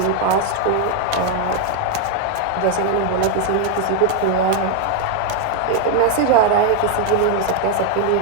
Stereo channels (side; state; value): both; different; correlation 0.01